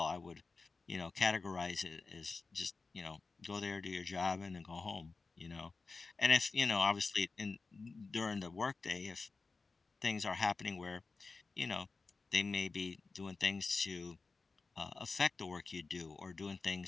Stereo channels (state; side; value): quieter; right; 4.1 dB